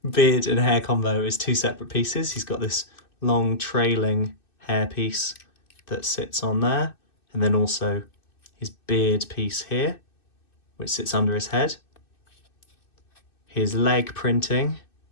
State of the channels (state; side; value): late; right; 2.6 ms